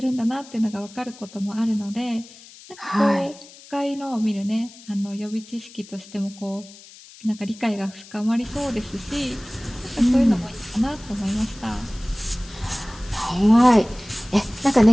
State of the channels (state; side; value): noise; left; hiss, 20 dB below the sound